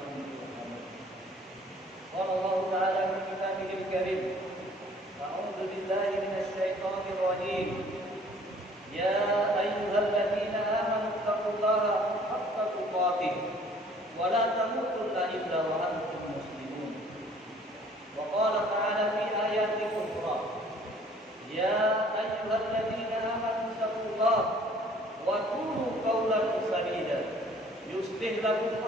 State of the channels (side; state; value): both; normal; correlation 0.55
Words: ترحمون. قال الله تعالى في كتابه الكريم: أعوذ بالله من الشيطان الرجيم. يا أيها الذين آمنوا اتقوا الله حق تقاته ولا تموتن إلا وأنتم مسلمون. وقال تعالى في آيات أخرى: يا أيها الذين آمنوا اتقوا الله وقولوا قولا سديدا يصلح لكم